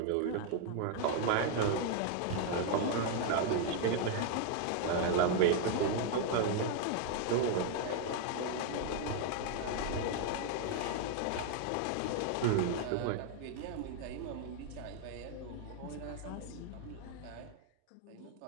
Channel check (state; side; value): different; both; correlation 0.00